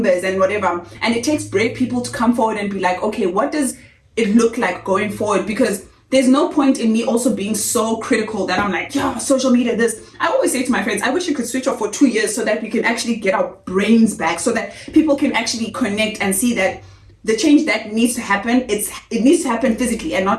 and whatever. And it takes brave people to come forward and be like, okay, what does it look like going forward? Because there's no point in me also being so critical that I'm like, yeah, social media, this. I always say to my friends, I wish you could switch off for 2 years so that we can actually get our brains back, so that people can actually connect and see that the change that needs to happen, it needs to happen physically and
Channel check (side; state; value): both; identical; correlation 1.00